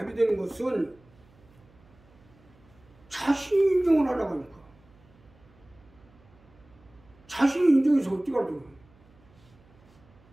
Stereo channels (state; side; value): noise; right; hum, 28 dB below the sound